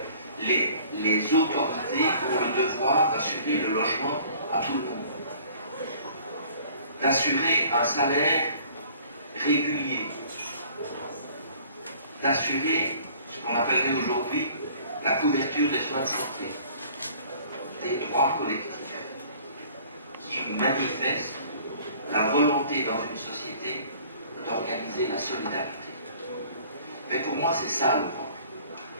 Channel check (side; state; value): both; inverted; correlation -0.53